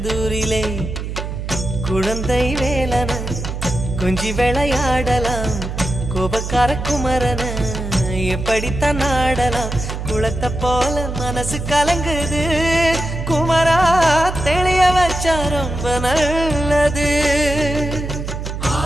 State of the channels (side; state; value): right; noise; hum, 6 dB below the sound